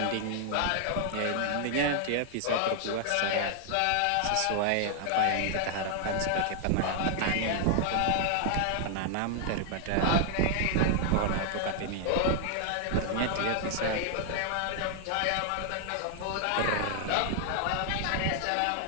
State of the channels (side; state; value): both; different; correlation 0.00